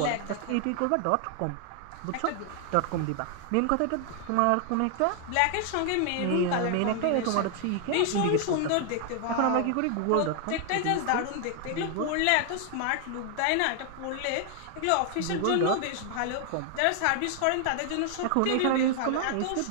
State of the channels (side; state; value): both; different; correlation 0.00